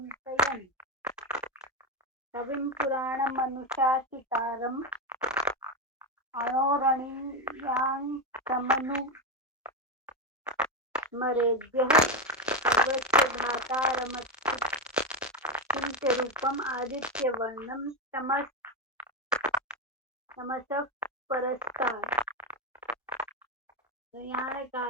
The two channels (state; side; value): normal; both; correlation 0.11